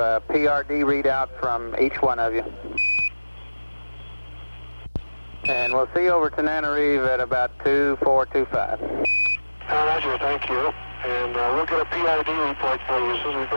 PRD readout from each one of you. And we'll see you over to NANOREV at about 2425. Roger, thank you. And we'll get a PID report for you as soon as we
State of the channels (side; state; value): both; inverted; correlation -1.00